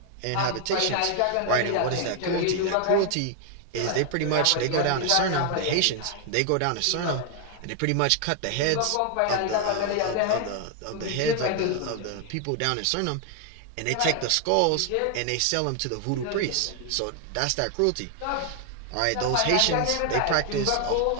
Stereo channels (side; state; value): both; different; correlation 0.00